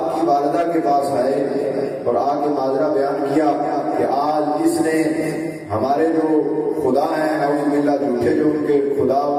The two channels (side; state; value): both; identical; correlation 1.00